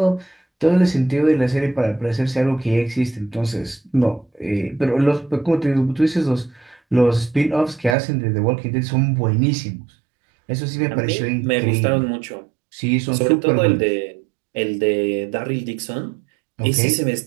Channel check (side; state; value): left; drops out; at 8.0 s